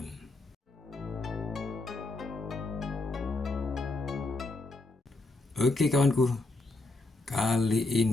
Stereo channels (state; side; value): quieter; right; 3.0 dB